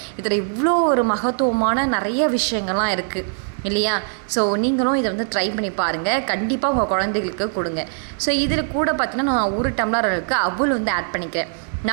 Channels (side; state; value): left; silent; 65 dB below the other